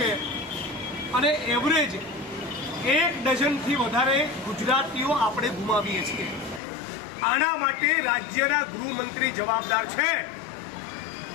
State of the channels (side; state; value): right; drops out; at 6.6 s